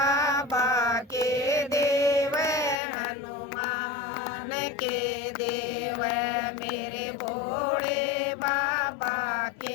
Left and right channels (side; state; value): right; drops out; at 2.8 s